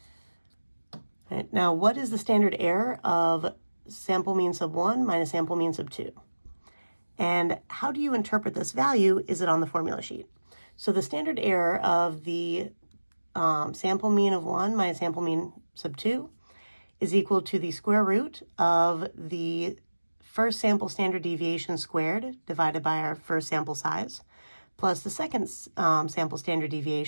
Right, now, what is the standard error of sample mean sub 1 minus sample mean sub 2? And how do you interpret this value? Is it on the formula sheet? So the standard error of the sample mean of 1 minus sample mean sub 2 is equal to the square root of the first sample standard deviation squared divided by our first sample size, plus the second sample standard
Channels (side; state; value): both; inverted; correlation -1.00